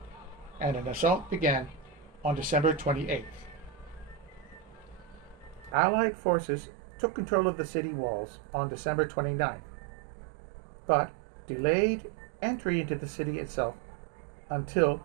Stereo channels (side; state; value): left; drops out; at 5.8 s